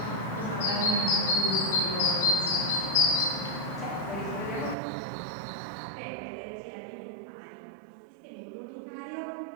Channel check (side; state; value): left; drops out; at 4.8 s